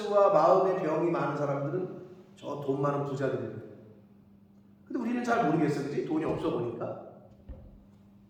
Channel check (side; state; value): both; identical; correlation 1.00